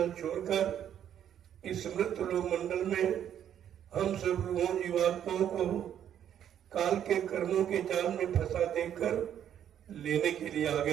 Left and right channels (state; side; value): quieter; left; 9.9 dB